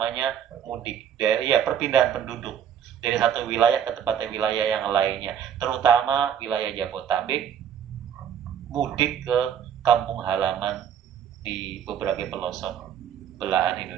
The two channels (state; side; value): quieter; left; 9.0 dB